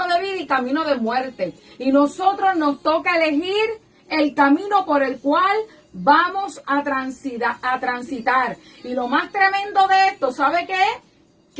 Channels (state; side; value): identical; both; correlation 1.00